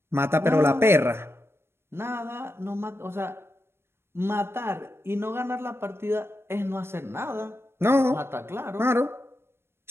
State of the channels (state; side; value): late; left; 0.12 ms